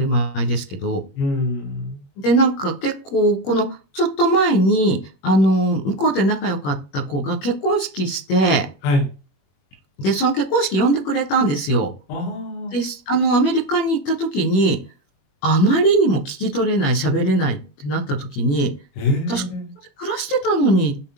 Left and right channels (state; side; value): late; right; 21 ms